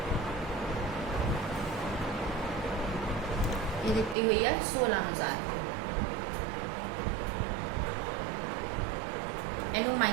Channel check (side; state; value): left; drops out; at 4.2 s